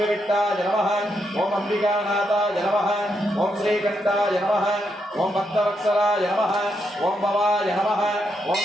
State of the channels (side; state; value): both; normal; correlation 0.80